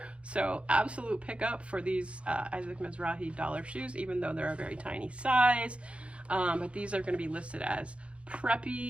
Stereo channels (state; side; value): late; left; 0.061 ms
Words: so absolute pickup for these Isaac Mizrahi dollar shoes, even though they're a very tiny size. But these are going to be listed as